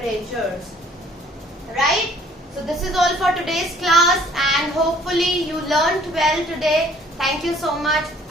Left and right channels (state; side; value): normal; both; correlation 0.57